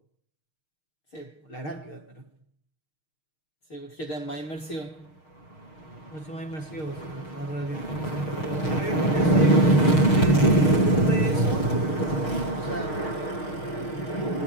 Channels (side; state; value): right; late; 6.5 ms